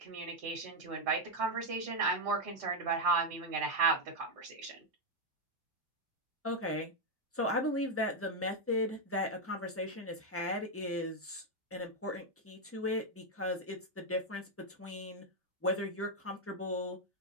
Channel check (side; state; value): both; normal; correlation 0.01